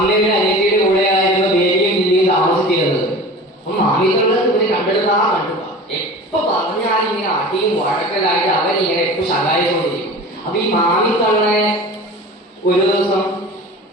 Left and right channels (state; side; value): normal; both; correlation 0.37